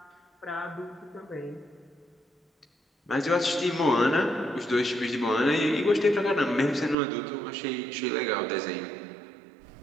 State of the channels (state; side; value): drops out; left; at 7.0 s